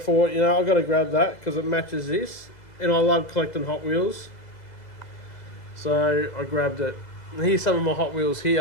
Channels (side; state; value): right; late; 2.0 ms